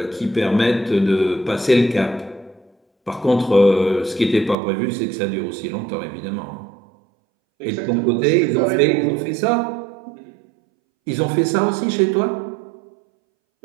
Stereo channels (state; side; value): drops out; left; at 4.5 s